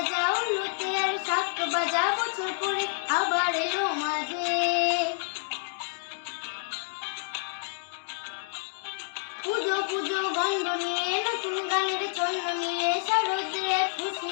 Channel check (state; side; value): silent; right; digital silence